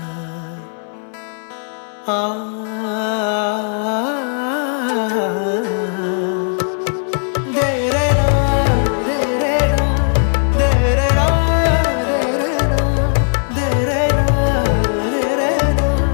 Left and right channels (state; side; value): silent; right; 60 dB below the other